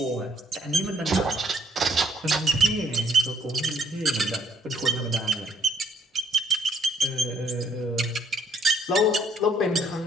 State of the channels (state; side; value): normal; both; correlation 0.67